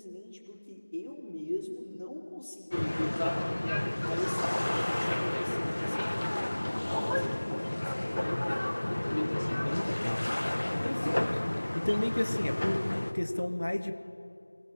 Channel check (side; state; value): both; inverted; correlation -1.00